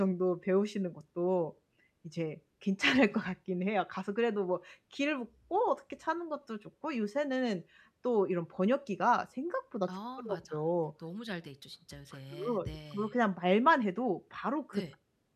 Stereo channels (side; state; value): both; identical; correlation 1.00